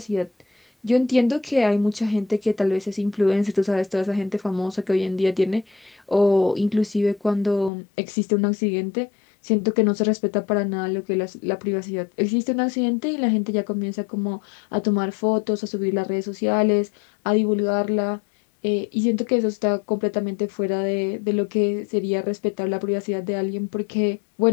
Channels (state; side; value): drops out; right; at 7.7 s